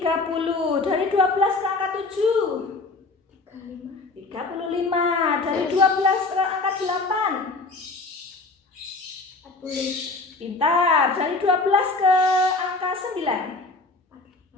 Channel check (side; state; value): right; quieter; 3.5 dB